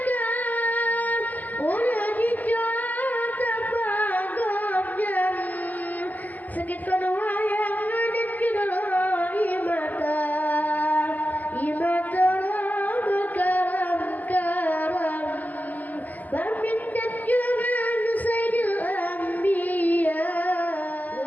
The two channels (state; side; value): late; right; 0.080 ms